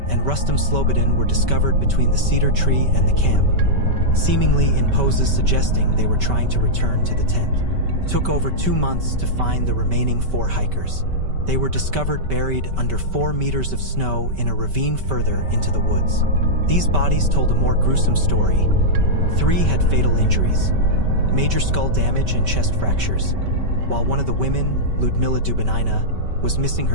and Rustam Slobodin were discovered between the cedar tree and the camp, seemingly in poses suggesting they were trying to return to the tent. It took over 2 months to find the remaining 4 hikers. They were discovered buried under 4 meters of snow in a ravine further into the woods. These bodies told a more gruesome story. 3 had fatal injuries, major skull damage and chest fractures, while one of the women, Ludmila Dubinina, was missing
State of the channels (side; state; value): left; late; 5.2 ms